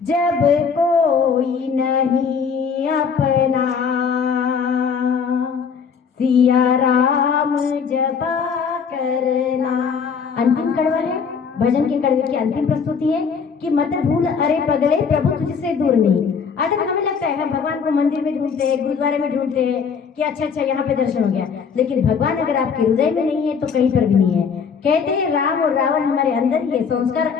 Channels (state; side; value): quieter; right; 6.2 dB